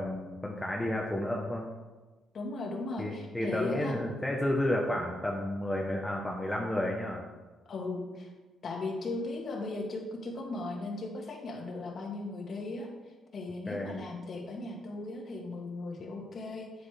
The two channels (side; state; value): both; normal; correlation 0.83